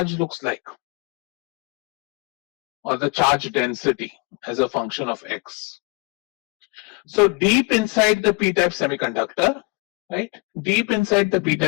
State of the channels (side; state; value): right; quieter; 29.4 dB